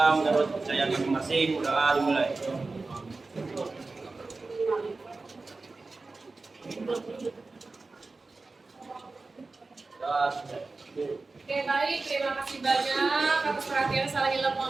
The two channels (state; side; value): quieter; left; 3.6 dB